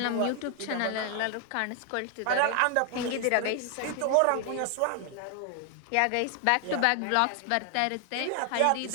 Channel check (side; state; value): both; different; correlation 0.00